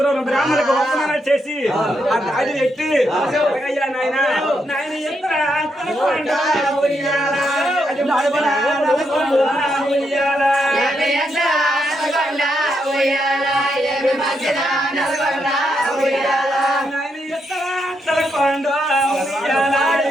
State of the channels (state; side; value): normal; both; correlation 0.80